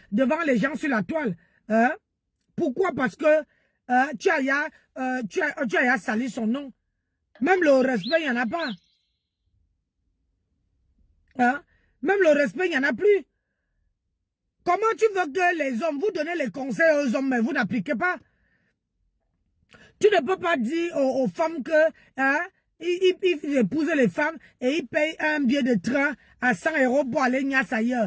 devant les gens sur la toile. Hein? Pourquoi? Parce que tu as sali son nom. Même le respect, il n'y en a pas. Hein? Même le respect, il n'y en a plus. Comment tu veux que les hommes, vous donnez les conseils aux hommes, mais vous n'appliquez pas? Tu ne peux pas dire aux femmes que hein, ils épousent les femmes et ils payent un billet de train à 100 € pour aller niasse ailleurs.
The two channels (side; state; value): both; identical; correlation 1.00